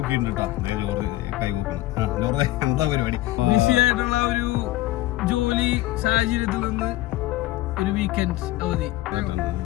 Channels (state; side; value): quieter; right; 16.9 dB